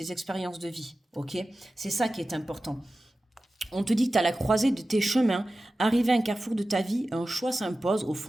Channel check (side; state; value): both; normal; correlation 0.95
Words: expériences de vie. Ok? C'est ça qui est important. On te dit que tu as la croisée de tes chemins. Arrivé à un carrefour de ta vie, un choix s'impose. Au